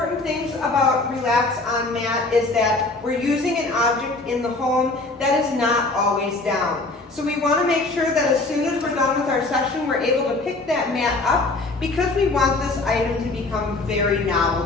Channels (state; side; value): quieter; right; 3.2 dB